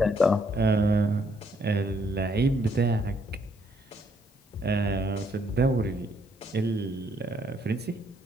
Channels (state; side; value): normal; both; correlation 0.70